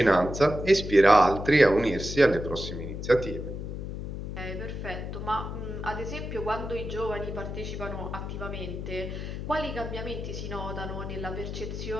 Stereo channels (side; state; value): left; noise; hum, 6 dB below the sound